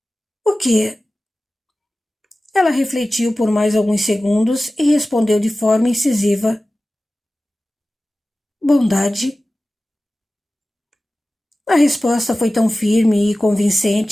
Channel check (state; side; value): normal; both; correlation 0.96